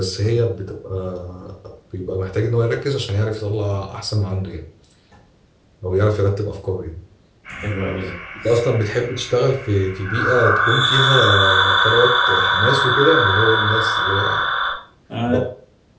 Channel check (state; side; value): identical; both; correlation 1.00